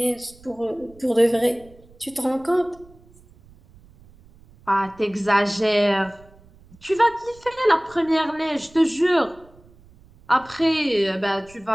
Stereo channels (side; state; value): right; noise; rumble, 26 dB below the sound